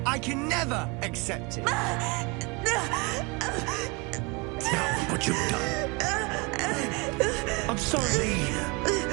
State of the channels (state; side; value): quieter; left; 28.6 dB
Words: I can never accept it. Now, what you've done. I'm sorry.